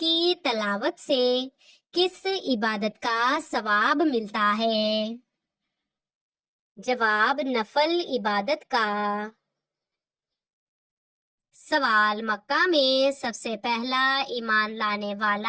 تلاوت سے کس عبادت کا ثواب ملتا ہے؟ جواب: نفل عبادت کا۔ سوال: مکہ میں سب سے پہلا ایمان لانے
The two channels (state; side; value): identical; both; correlation 1.00